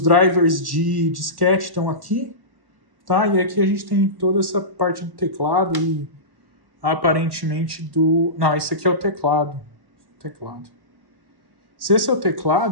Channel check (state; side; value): late; left; 1.1 ms